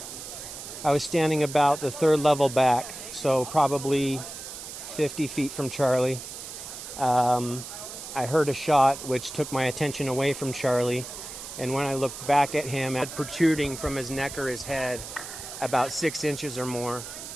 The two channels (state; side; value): noise; right; hiss, 10 dB below the sound